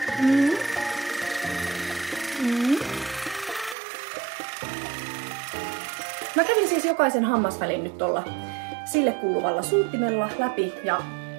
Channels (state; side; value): drops out; left; at 3.8 s